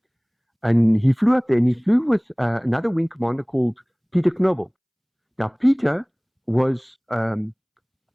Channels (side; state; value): both; identical; correlation 1.00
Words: And he flew up there, and he flew with another wing commander called Peter Knobel. Now, Peter was